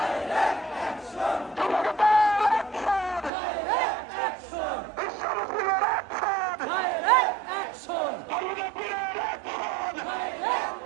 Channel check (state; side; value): drops out; left; at 3.3 s